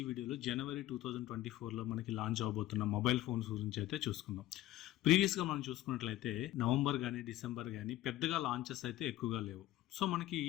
ఈ వీడియోలో జనవరి 2024లో మనకి లాంచ్ అవబోతున్న మొబైల్ ఫోన్స్ గురించి అయితే చూసుకుందాం. ప్రీవియస్గా మనం చూసుకున్నట్లయితే నవంబర్ కానీ డిసెంబర్ కానీ పెద్దగా లాంచెస్ అయితే ఎక్కువగా లేవు. సో మనకి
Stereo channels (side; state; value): right; quieter; 15.1 dB